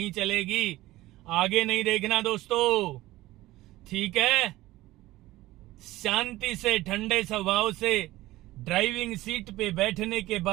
चलेगी। आगे नहीं देखना दोस्तों, ठीक है। शांति से, ठंडे स्वभाव से ड्राइविंग सीट पे बैठने के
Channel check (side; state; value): left; quieter; 17.3 dB